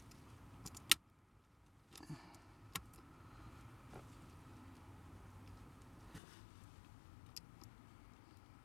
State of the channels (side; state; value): right; drops out; at 6.2 s